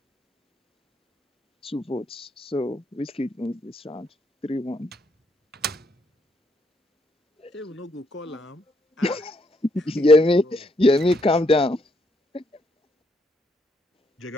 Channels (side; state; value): both; normal; correlation 0.74